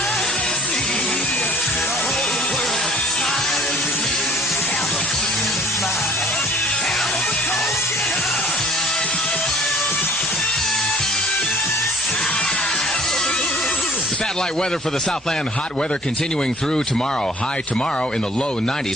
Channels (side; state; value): both; normal; correlation 0.54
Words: Satellite weather for the Southland. Hot weather continuing through tomorrow. High tomorrow in the low